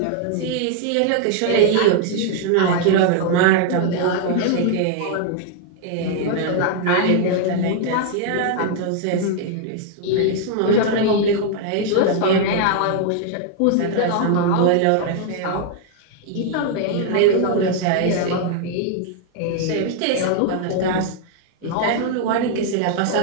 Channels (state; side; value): different; both; correlation 0.00